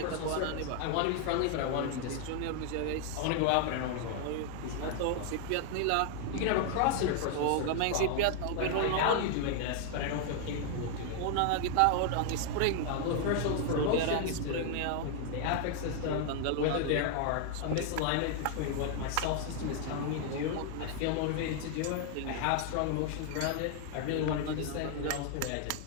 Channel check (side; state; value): both; different; correlation 0.00